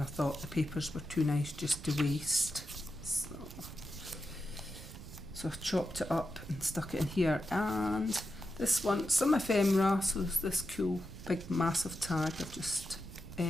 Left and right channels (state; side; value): noise; right; rumble, 13 dB below the sound